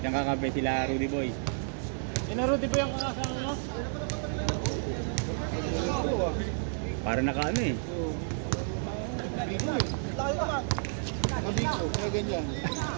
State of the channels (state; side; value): silent; left; digital silence